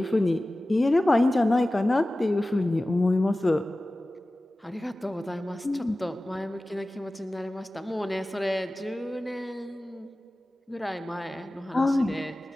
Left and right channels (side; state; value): both; normal; correlation 0.96